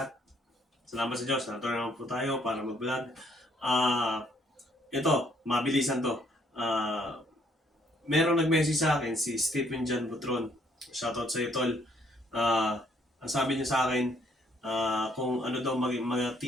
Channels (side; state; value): both; normal; correlation 0.67